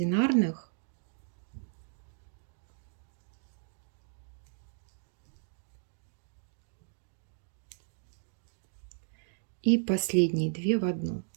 и последние 2 в одну.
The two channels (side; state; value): left; silent; digital silence